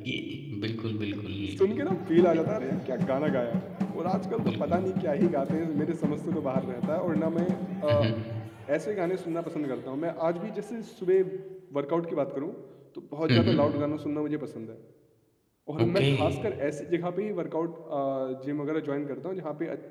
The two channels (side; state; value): both; identical; correlation 1.00